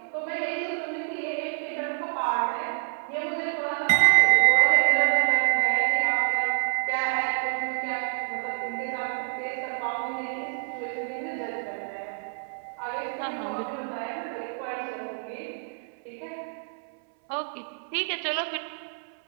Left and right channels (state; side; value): silent; left; 60 dB below the other